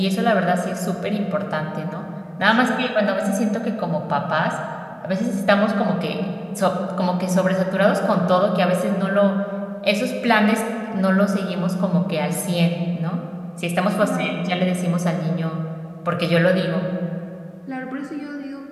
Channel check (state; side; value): identical; both; correlation 1.00